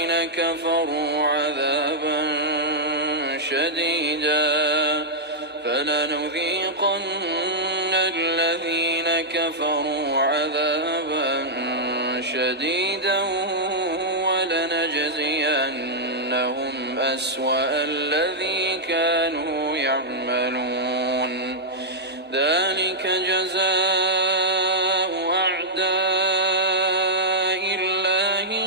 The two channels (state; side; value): normal; both; correlation -0.06